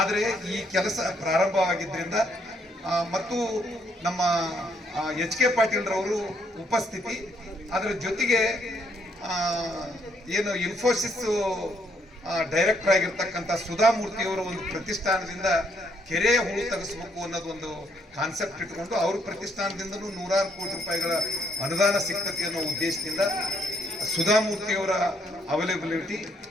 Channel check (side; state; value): both; normal; correlation 0.71